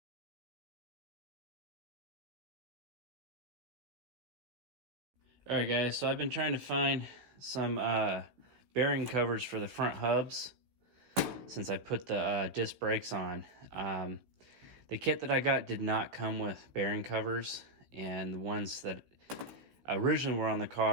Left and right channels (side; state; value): left; late; 16 ms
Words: Alright guys, so I've been trying to find some bearing covers for the front hubs since I put the disc brakes on. The kit that I got did not come with bearing covers, and the ones that originally were on the